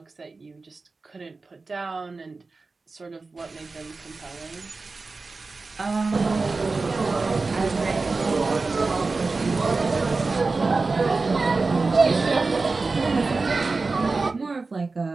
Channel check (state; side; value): quieter; left; 3.9 dB